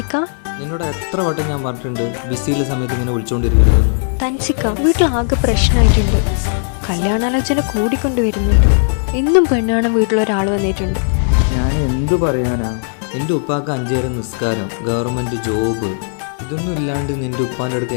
നിന്നോട് എത്ര വട്ടം ഞാൻ പറഞ്ഞിട്ടുണ്ട് ബിസിയിലെ സമയത്ത് ഇങ്ങനെ വിളിച്ചോണ്ടിരിക്കരുത്. തൻസിക്ക, വീട്ടിലാകെ പ്രശ്നമായിട്ടുണ്ട്. കല്യാണാലോചന കൂടിക്കൊണ്ടുവരുന്നുണ്ട്. എന്നും പെണ്ണാണ് വീട്ടിലൊരാൾ വന്നിട്ടുണ്ട്. ഞാൻ എന്തു പറയാനാ? നിന്റെ ഉപ്പാക്ക് 5 നേരം നിസ്കാരം, ഗവൺമെന്റ് ജോബ്, ഇതൊന്നും ഇല്ലാണ്ട് നിന്റെ ഉപ്പാൻ്റെ അടുത്ത്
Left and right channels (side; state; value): right; silent; digital silence